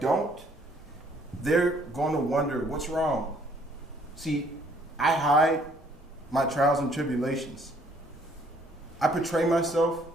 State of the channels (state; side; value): normal; both; correlation 0.62